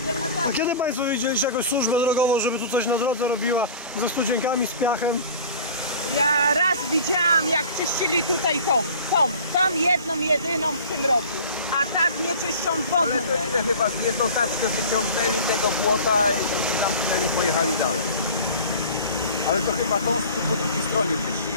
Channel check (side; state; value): both; inverted; correlation -0.41